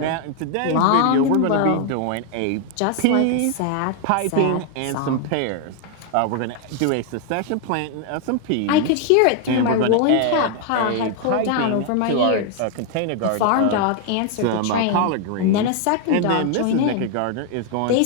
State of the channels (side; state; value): both; different; correlation 0.00